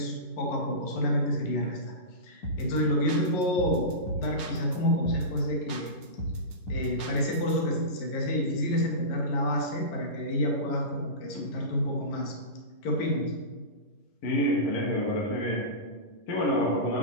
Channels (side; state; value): right; late; 10 ms